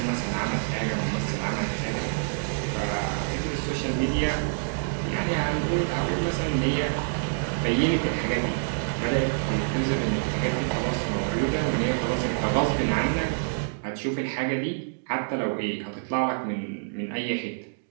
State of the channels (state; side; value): silent; left; digital silence